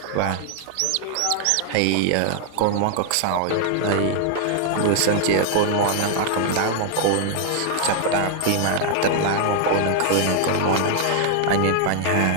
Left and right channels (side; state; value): both; different; correlation 0.00